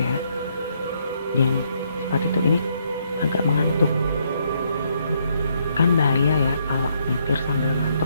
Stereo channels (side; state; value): both; inverted; correlation -0.73